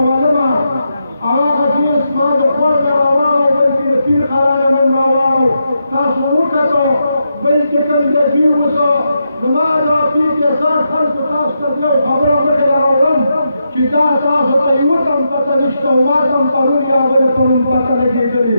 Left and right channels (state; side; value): inverted; both; correlation -0.84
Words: معلومه هغه حدیث ما د خور ته راواړو بلکې د پیر قرانه من راواړو تاسو وکتو بلکې کوم د دوی اوسه زما دا پیر کې سر خلکو تاسو ته یو خبره مخکې راوړم چې دا تاسو ته یوه تم پته نشته او ما ته هم پرون یا بلې پرون پته